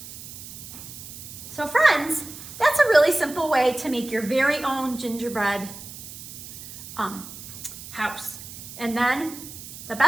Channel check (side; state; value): right; noise; hiss, 13 dB below the sound